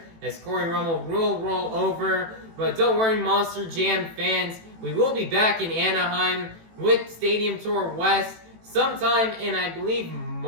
as Cory Rummell will roll over. But don't worry, Monster Jam fans. We will be back in Anaheim with Stadium Tour West sometime in, I believe,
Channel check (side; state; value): left; late; 18 ms